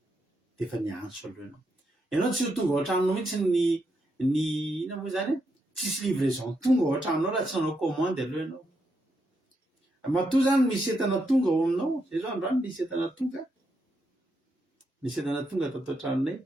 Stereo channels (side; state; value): both; normal; correlation 0.81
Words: dia efa niantso aloha ianao tsy ho tonga ao an-tranonao mihitsy ny ina moa zany tsisy livraison tonga ao an-tranonao raha tsy nanao commande aloha ianao matoa zany misy entana tonga ao aminao zay zao androany misy entana tonga tato an-tranonay